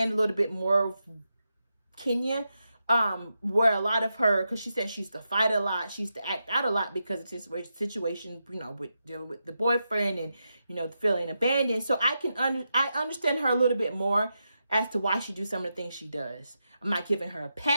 a little bit more of Kenya. Where a lot of her, because she said she used to fight a lot, she used to act out a lot because of this situation, you know, with dealing with the boyfriend and, you know, feeling abandoned. So I understand her a little bit more as to why she do some of the things she does. I'm not giving her a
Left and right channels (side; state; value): both; inverted; correlation -0.87